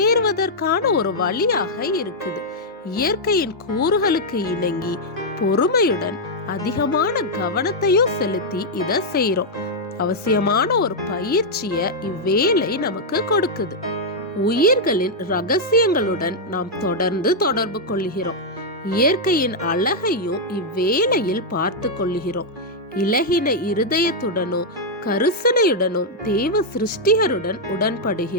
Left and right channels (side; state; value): both; normal; correlation -0.04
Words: ஒரு வழியாக இருக்குது. இயற்கையின் கூறுகளுக்கு இணங்கி பொறுமையுடன் அதிகமான கவனத்தையும் செலுத்தி இதை செய்யறோம். அவசியமான ஒரு பயிற்சிய இவ்வேலை நமக்கு கொடுக்குது. உயிர்களின் ரகசியங்களுடன் நாம் தொடர்ந்து தொடர்பு கொள்கிறோம். இயற்கையின் அழகையும் இவ்வேளையில் பார்த்து கொள்கிறோம். இலகின இருதயத்துடனும் கருசனையுடனும் தேவ சிருஷ்டிகருடன்